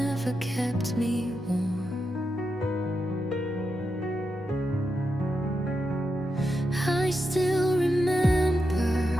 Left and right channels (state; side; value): normal; both; correlation 0.86